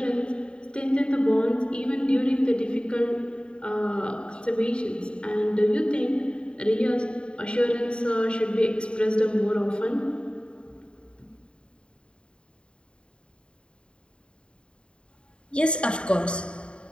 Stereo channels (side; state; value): right; late; 0.053 ms